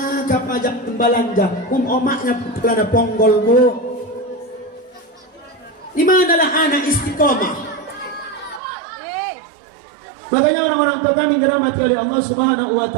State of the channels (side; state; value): left; drops out; at 8.6 s